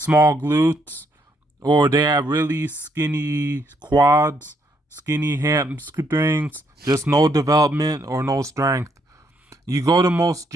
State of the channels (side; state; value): both; normal; correlation 0.73